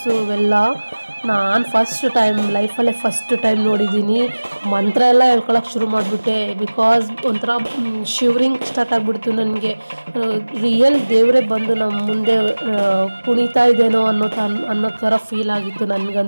ಇವೆಲ್ಲ. ನಾನು ಲೈಫಲ್ಲೇ ಫಸ್ಟ್ ಟೈಮ್ ನೋಡಿದ್ದೀನಿ. ಮಂತ್ರ ಎಲ್ಲ ಹೇಳ್ಕೊಳಕ್ಕೆ ಶುರು ಮಾಡಿಬಿಟ್ಟೆ, ಬಿಕಾಸ್ ಒಂಥರ ಶಿವರಿಂಗ್ ಸ್ಟಾರ್ಟ್ ಆಗಿಬಿಡ್ತು ನನಗೆ. ರಿಯಲ್ ದೇವರೇ ಬಂದು ನಮ್ಮ ಮುಂದೆ ಕುಣಿತಾ ಇದ್ದೇನೋ ಅನ್ನೋ ಥರ ಫೀಲ್ ಆಗಿತ್ತು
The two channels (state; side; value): inverted; both; correlation -1.00